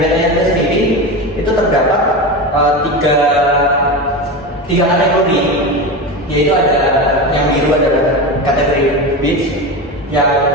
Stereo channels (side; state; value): both; normal; correlation 0.22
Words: itu sendiri itu terdapat tiga kategori, yaitu ada yang biru adalah kategori beach, yang